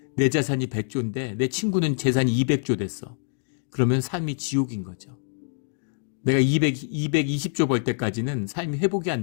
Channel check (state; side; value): silent; right; digital silence